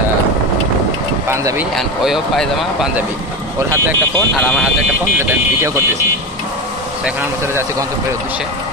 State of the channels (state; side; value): normal; both; correlation 0.21